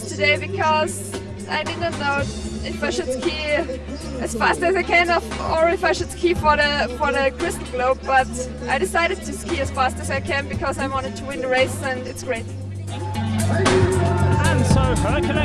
today because I didn't know if I should ski as fast as I can or if I should ski for the Crystal Globe, but I decided to ski as fast as I can because I wanted to win the race, and it's great. And so her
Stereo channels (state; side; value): identical; both; correlation 1.00